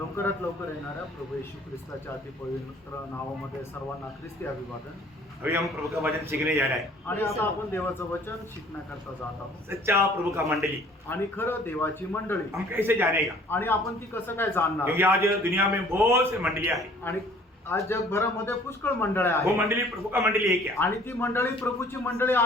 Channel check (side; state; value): both; normal; correlation 0.54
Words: लवकर येणाऱ्या प्रभू येशू ख्रिस्ताच्या अति पवित्र नावामध्ये सर्वांना ख्रिस्ती अभिवादन। अभी हम प्रभु का वचन सीखने जा रहे हैं। आणि आता आपण देवाचं वचन शिकण्याकरता जात आहोत। सच्चा प्रभु का मंडली आणि खरं देवाची मंडळी हम कैसे जानेगा, आणि आपण ती कसं काय जाणणार? क्योंकि आज दुनिया में बहुत से मंडलियां हैं। आणि आज जगभरामध्ये पुष्कळ मंडळ्या वो आहेत मंडली प्रभु का मंडली है क्या? आणि ती मंडळी प्रभूची मंडळी